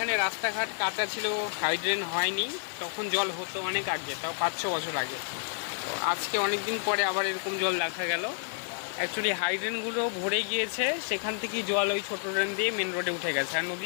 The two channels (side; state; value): right; silent; digital silence